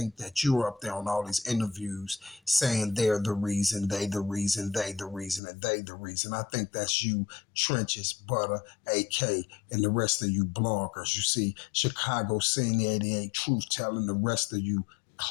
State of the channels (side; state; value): right; drops out; at 5.4 s